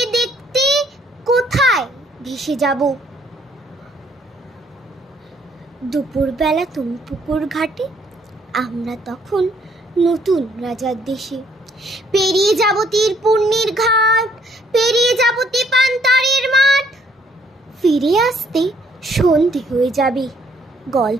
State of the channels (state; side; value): normal; both; correlation 0.66